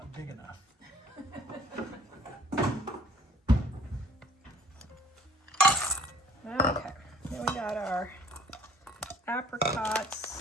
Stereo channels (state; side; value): normal; both; correlation 0.55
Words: big enough. Okay, then we got our